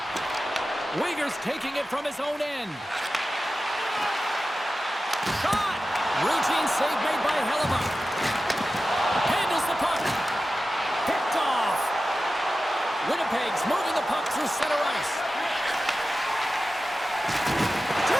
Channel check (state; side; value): normal; both; correlation 0.94